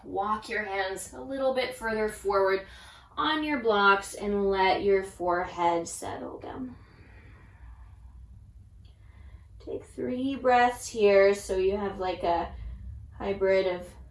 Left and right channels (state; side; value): identical; both; correlation 1.00